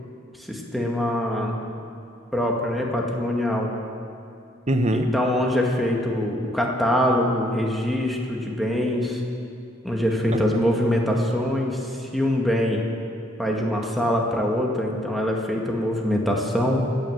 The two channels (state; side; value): normal; both; correlation 0.69